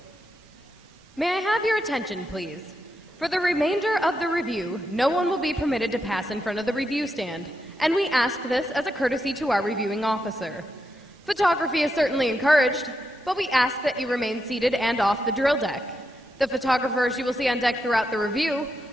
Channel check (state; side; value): normal; both; correlation 0.84